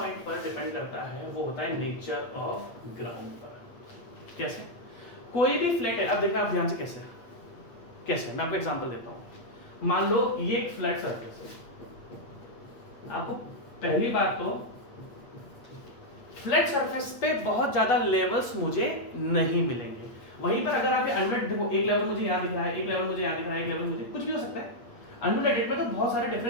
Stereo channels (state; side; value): late; right; 8.5 ms